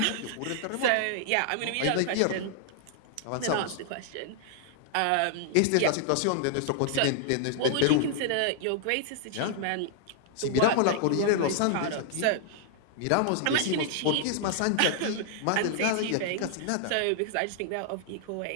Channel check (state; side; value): different; both; correlation -0.01